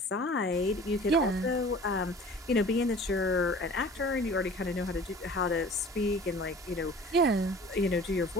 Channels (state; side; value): normal; both; correlation 0.44